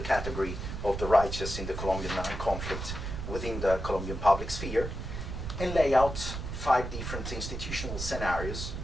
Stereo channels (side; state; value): right; noise; rumble, 6 dB below the sound